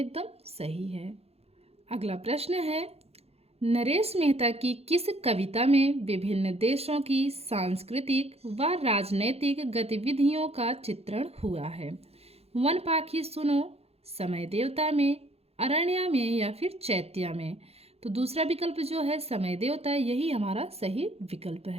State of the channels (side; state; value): left; late; 0.29 ms